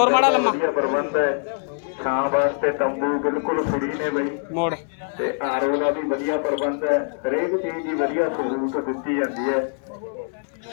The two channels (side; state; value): right; silent; 63 dB below the other